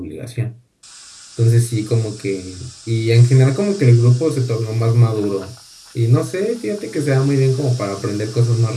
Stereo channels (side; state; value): both; identical; correlation 1.00